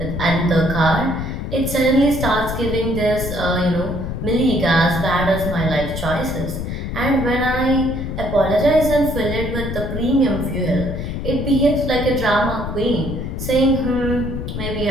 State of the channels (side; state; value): left; noise; rumble, 5 dB below the sound